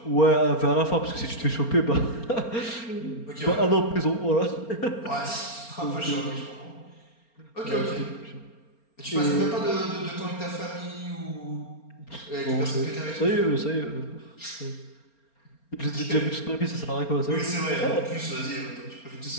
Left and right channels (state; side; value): late; right; 4.3 ms